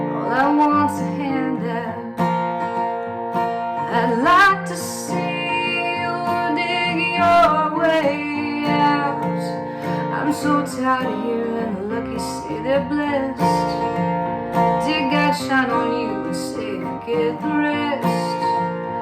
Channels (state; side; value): identical; both; correlation 1.00